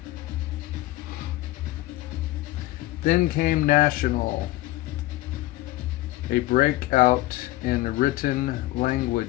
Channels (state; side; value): quieter; right; 17.3 dB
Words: Then came national, a breakout in written